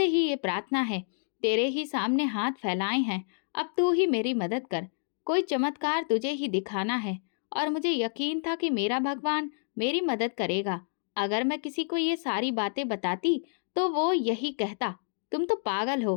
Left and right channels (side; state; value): right; silent; 59 dB below the other